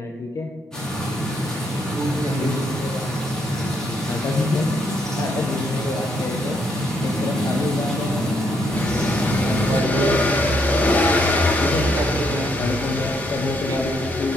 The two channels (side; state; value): both; normal; correlation 0.74